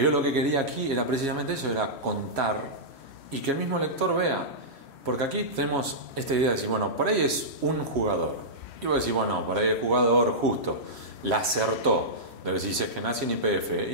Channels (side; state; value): left; late; 3.1 ms